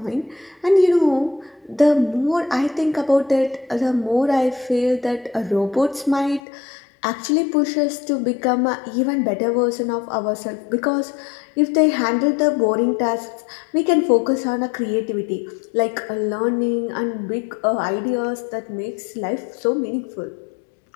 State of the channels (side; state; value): right; drops out; at 6.4 s